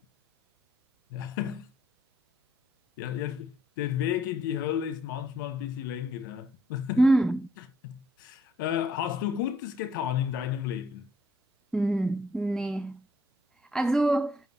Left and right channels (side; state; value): both; normal; correlation 0.68